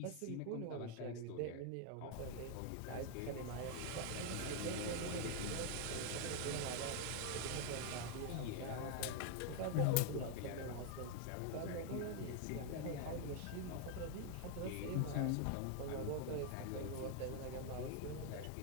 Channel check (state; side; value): different; both; correlation 0.01